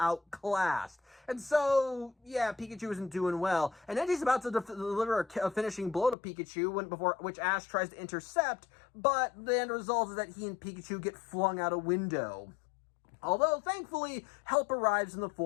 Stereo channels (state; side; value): drops out; right; at 6.2 s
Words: And so, yeah, Pikachu isn't doing well. And Entei's about to deliver a finishing blow to Pikachu, which Ash tries to intercept, but the end result is that he and Pikachu get flung out a window. Although, thankfully, help arrives in the